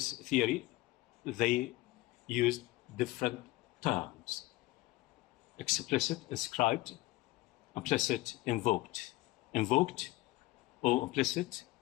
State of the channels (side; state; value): right; quieter; 19.1 dB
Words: theory, they use different terms. Explicit, inscribed, implicit, invoked. Invoked or implicit